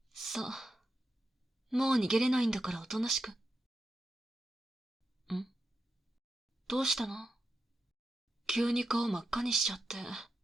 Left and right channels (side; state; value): both; normal; correlation 0.88